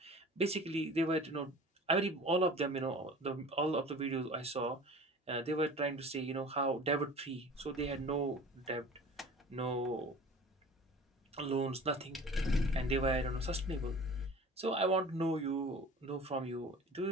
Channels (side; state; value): both; normal; correlation 0.41